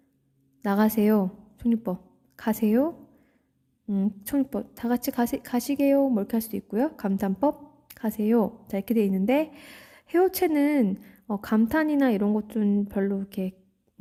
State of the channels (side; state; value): both; identical; correlation 1.00